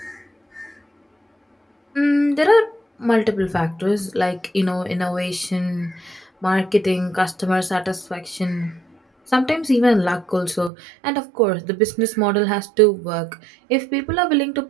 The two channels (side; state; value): left; drops out; at 10.7 s